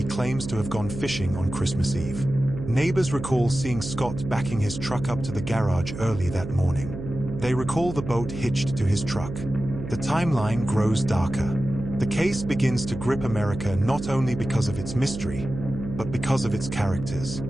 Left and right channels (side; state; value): right; noise; hum, 8 dB below the sound